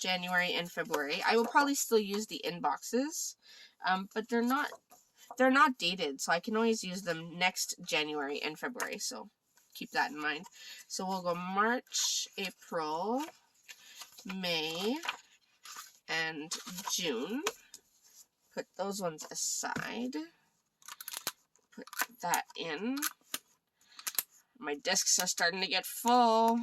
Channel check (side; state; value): both; identical; correlation 1.00